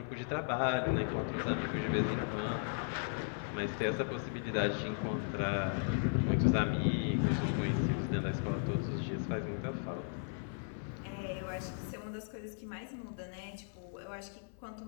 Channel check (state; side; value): silent; right; 53 dB below the other